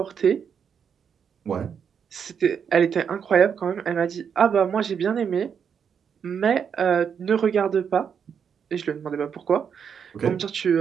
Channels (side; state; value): left; quieter; 7.2 dB